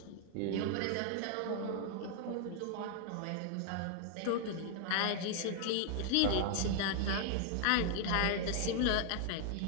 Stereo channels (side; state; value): both; different; correlation 0.00